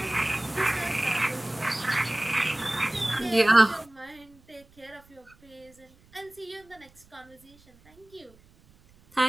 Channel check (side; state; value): right; noise; rumble, 28 dB below the sound